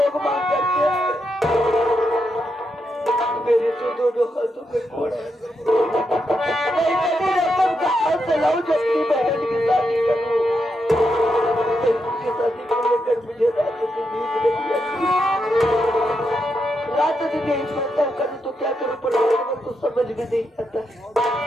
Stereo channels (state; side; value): normal; both; correlation 0.83